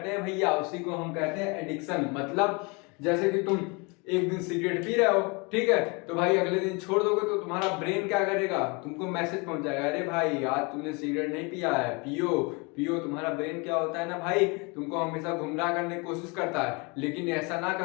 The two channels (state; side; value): quieter; right; 29.6 dB